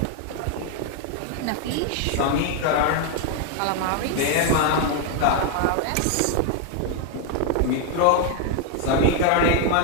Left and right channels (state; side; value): different; both; correlation 0.00